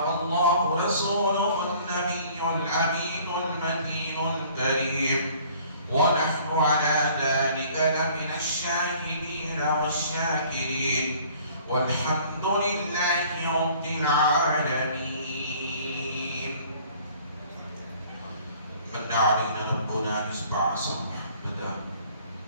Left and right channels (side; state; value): both; inverted; correlation -0.53